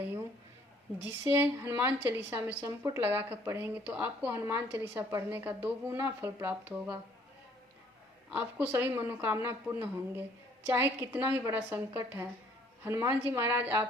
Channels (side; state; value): both; normal; correlation 0.61